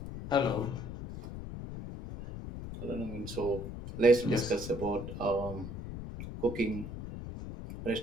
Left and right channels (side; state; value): left; noise; rumble, 9 dB below the sound